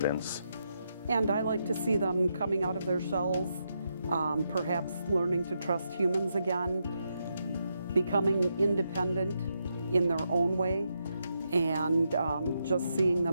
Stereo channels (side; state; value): both; inverted; correlation -0.83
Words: And I like to see them coming out of their shells, perhaps learning to trust humans again, becoming independent in their own way, and just seeing